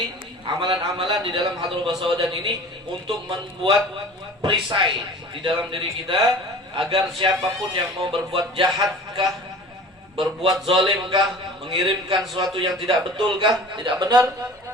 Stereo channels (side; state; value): both; normal; correlation 0.42